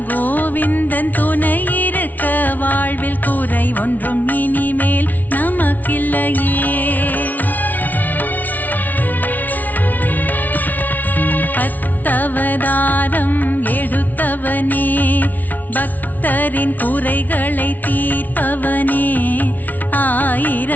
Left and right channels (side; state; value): right; late; 0.080 ms